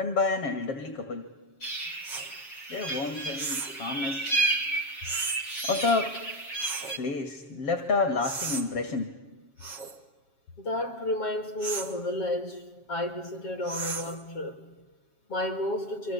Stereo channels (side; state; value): right; late; 7.3 ms